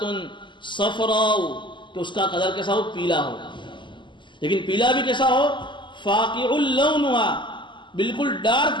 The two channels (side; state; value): right; late; 0.23 ms